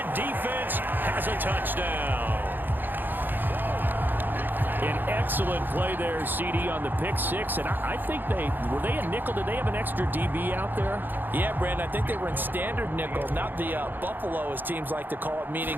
defense has a touchdown. An excellent play there, CD, on the pick six. And I think were they a nickel? Did they have an extra DB out there? Yeah, Brandon, I think they were in standard nickel, not the Buffalo, as teams like to call it, meaning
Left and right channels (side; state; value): left; late; 0.091 ms